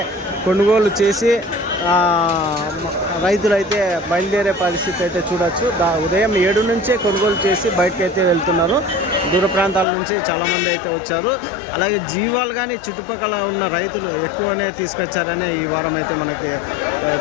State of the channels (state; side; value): drops out; right; at 9.9 s